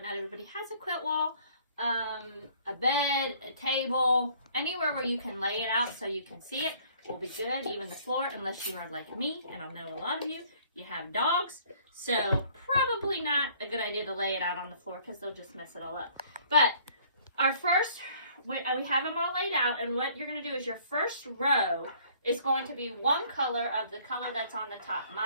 everybody has a quilt wall. A bed, a table, anywhere where you can lay it out so you can see it will be good. Even the floor, unless you are like me, and I know a lot of you have dogs, so probably not a good idea to lay it out on the floor because they'll just mess it all up. But our first, we have them all laid out, and what you're going to do is your first row is going to be one color of the color that's on the top.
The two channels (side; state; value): both; inverted; correlation -0.58